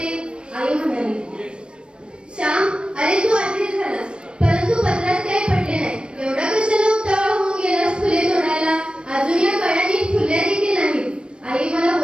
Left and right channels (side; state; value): left; late; 0.055 ms